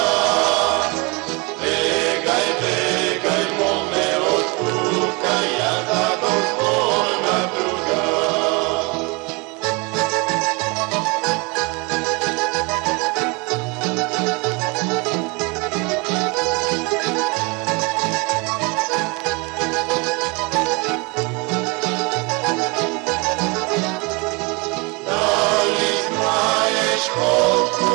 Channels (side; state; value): left; quieter; 28.7 dB